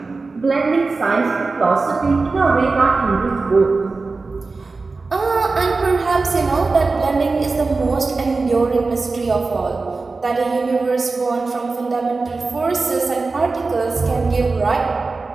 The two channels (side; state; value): left; quieter; 3.9 dB